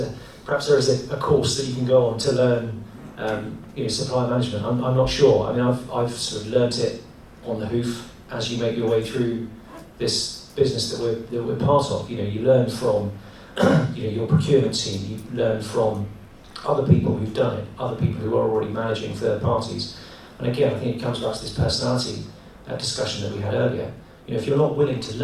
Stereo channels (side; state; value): both; identical; correlation 1.00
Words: a course that you can go on to learn supply management. I'm not sure. I mean, I've sort of learnt it on the hoof as you make your way through this business that we're part of. You learn from your procurement team, you learn from other people who've done it, other people who are already managing third parties. And again, I think it comes back to this personality discussion that we had earlier. If you're not willing to